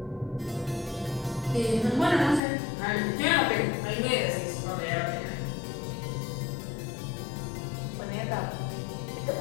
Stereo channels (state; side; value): drops out; right; at 2.4 s